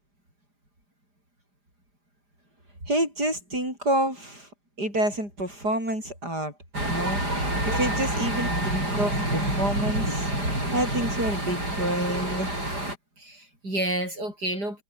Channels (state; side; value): late; left; 4.9 ms